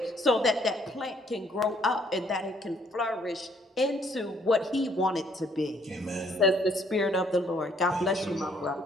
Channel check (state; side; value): normal; both; correlation 0.65